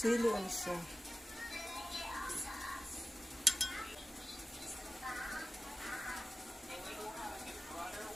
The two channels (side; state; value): both; normal; correlation 0.95